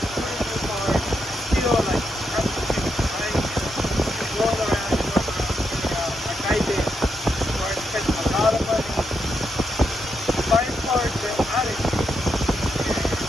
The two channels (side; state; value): both; normal; correlation 0.82